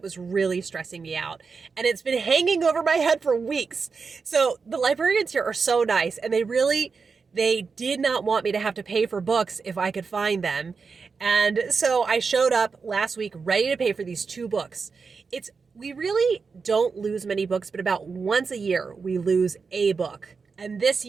was really stressing me out. And it's been hanging over my head for weeks. So the librarians here are so nice, and they did not want me to have to pay for books if I could find them. And so I showed up last week ready to pay for these 2 books. We really don't lose many books, but about once a year we lose a book. And this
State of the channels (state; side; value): quieter; left; 5.0 dB